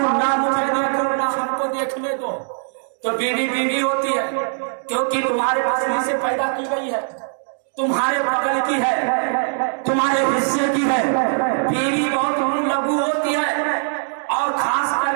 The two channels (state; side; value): silent; left; digital silence